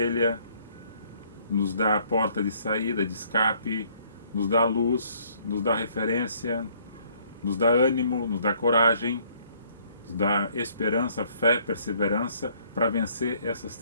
nos dá a porta de saída, de escape, nos dá luz, nos dá referência, nos dá ânimo, nos dá coragem, nos dá esperança, fé, perseverança para vencer essas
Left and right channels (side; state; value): both; inverted; correlation -0.63